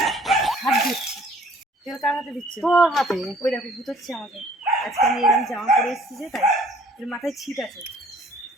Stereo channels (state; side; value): normal; both; correlation 0.56